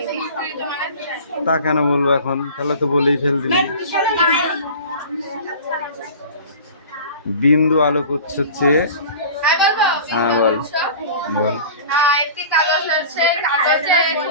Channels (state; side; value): inverted; both; correlation -0.39